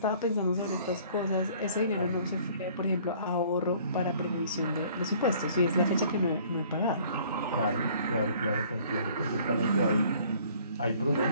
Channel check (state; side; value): inverted; both; correlation -0.55